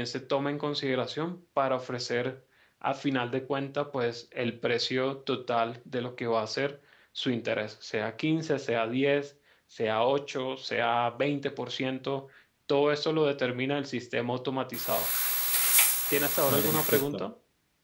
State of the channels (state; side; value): identical; both; correlation 1.00